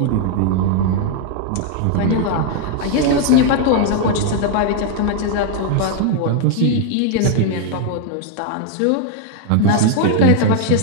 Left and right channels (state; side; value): different; both; correlation 0.00